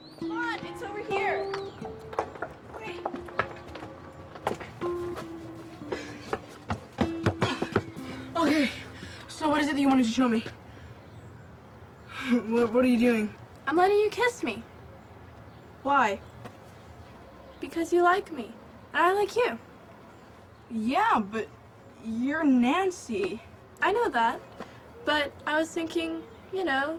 To show me. What are you doing? I'm letting you kiss me. Why? Because you like me. And I like you. Yeah, but you're Nancy. I know that. But I was thinking, you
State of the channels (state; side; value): identical; both; correlation 1.00